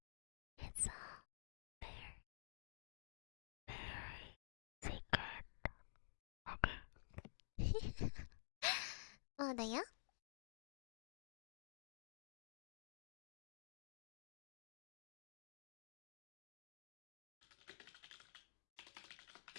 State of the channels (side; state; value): right; silent; digital silence